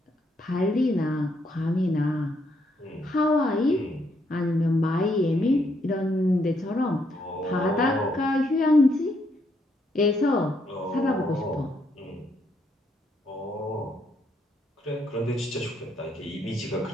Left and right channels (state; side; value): normal; both; correlation 0.74